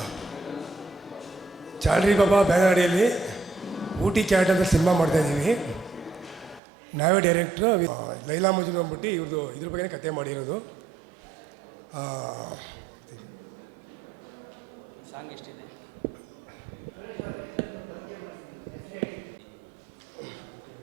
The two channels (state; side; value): drops out; left; at 6.6 s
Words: ಚಾಲ್ರಿ ಬಾಬಾ ಬ್ಯಾನರ್ ಅಡಿಯಲ್ಲಿ ಊಟಿ ಕ್ಯಾಟ್ ಅಂತ ಸಿನಿಮಾ ಮಾಡ್ತಾಯಿದ್ದೀವಿ. ನಾವೇ ಡೈರೆಕ್ಟ್ರು. ಲೈಲಾ ಮಜ್ನು ಅಂದ್ಬಿಟ್ಟು ಇವ್ರದ್ದು ಇದ್ರ ಬಗ್ಗೆ ಕತೆ ಮಾಡಿರೋದು.